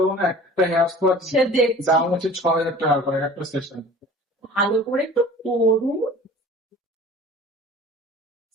না। একটা হেয়ার স্পা সে দেখছি, দাম হচ্ছে 6,000 টাকা করে একটা সেশন, ভালো করে একটু করুন।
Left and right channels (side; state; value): both; normal; correlation 0.44